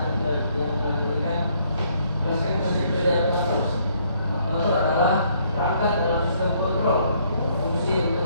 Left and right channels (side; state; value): both; inverted; correlation -0.68